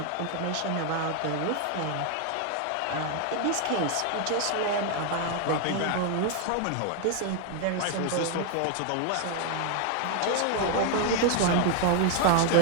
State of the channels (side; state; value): both; different; correlation 0.00